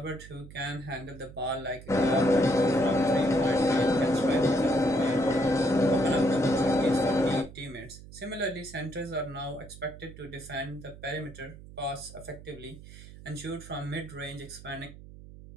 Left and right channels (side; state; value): right; noise; hum, 17 dB below the sound